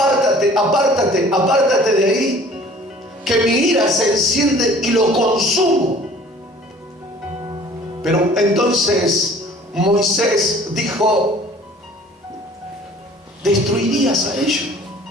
apártate, apártate de ahí, que mi ira se enciende y lo consumo. Pero entonces Moisés dijo: destruirías a ellos,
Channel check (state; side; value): normal; both; correlation 0.51